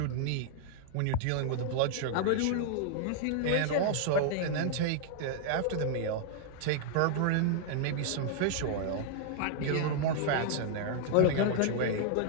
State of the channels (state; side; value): different; both; correlation 0.00